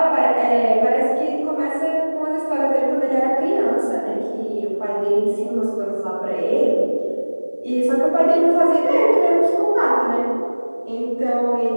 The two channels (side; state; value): both; inverted; correlation -1.00